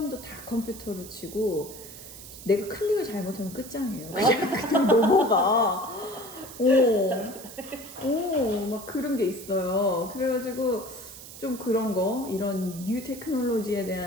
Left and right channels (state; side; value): noise; right; hiss, 15 dB below the sound